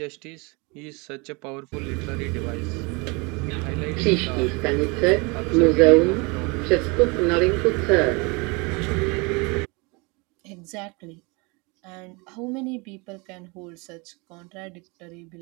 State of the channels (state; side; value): quieter; left; 28.5 dB